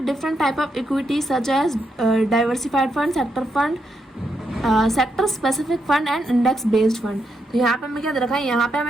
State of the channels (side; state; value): both; normal; correlation 0.81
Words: different type of equities such as diversified fund, sector fund, sector specific fund and index based fund. तो यहाँ पे हमें क्या दे रखा है, यहाँ पे